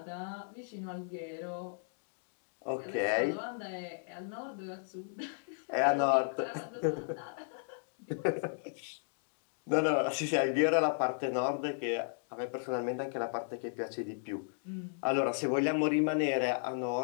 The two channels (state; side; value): silent; right; digital silence